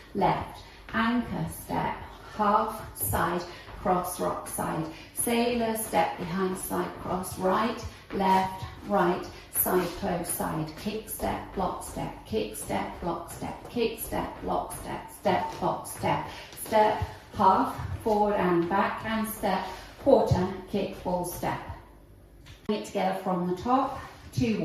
left, anchor step, half, side, cross, rock, side. Sailor, step behind, side, cross, right, left, right, side, close, side. Kick, step, block, step, kick, step, block, step, kick, step, block, step, step, block, step. Step, half, forward and back, and step, quarter, kick, full step. Bring it together from the top, 2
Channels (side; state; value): both; identical; correlation 1.00